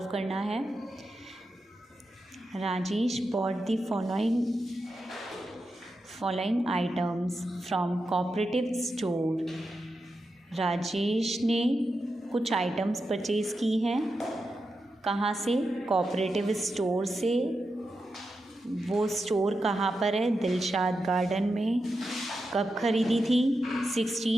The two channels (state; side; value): normal; both; correlation 0.88